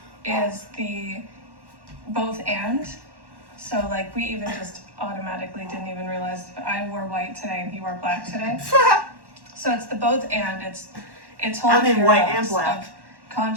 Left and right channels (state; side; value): late; left; 1.1 ms